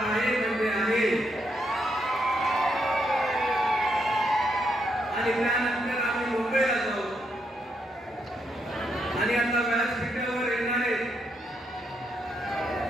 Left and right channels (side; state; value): both; normal; correlation 0.78